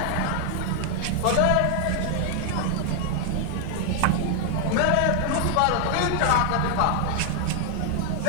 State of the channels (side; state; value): both; different; correlation 0.00